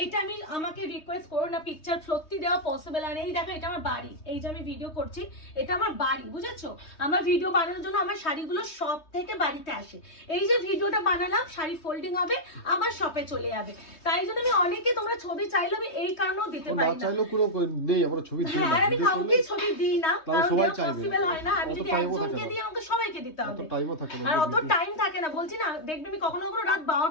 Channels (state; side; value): late; right; 3.2 ms